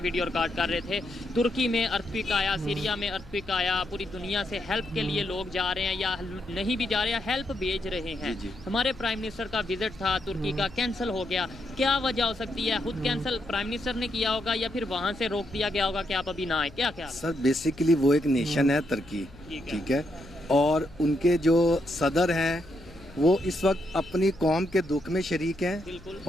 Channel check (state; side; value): noise; left; hum, 21 dB below the sound